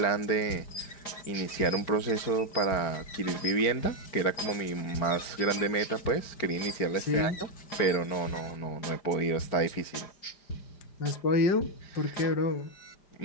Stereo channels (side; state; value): right; late; 5.0 ms